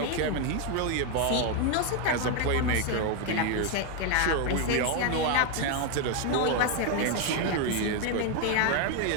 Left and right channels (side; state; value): both; different; correlation 0.01